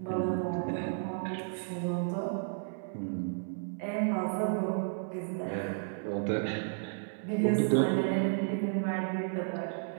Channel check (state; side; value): silent; left; 55 dB below the other